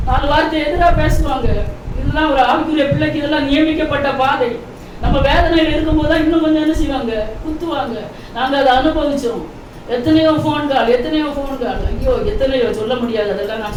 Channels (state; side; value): identical; both; correlation 1.00